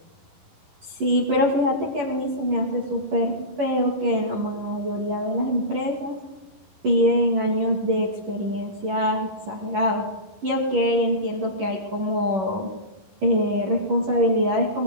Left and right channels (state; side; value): late; left; 11 ms